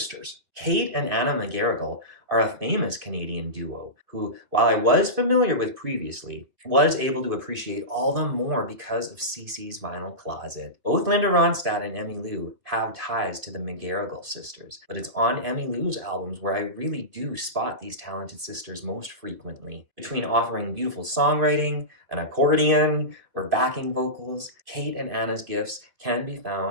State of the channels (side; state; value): left; late; 2.6 ms